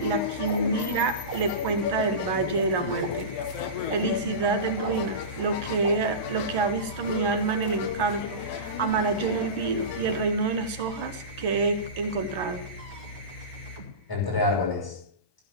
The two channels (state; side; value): late; right; 1.2 ms